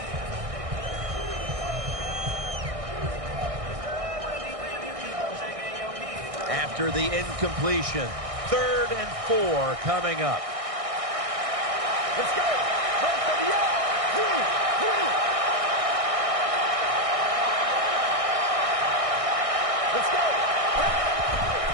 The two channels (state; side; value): late; left; 1.6 ms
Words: After the incompletion, 3rd and 4 coming up. Let's go. Let's go.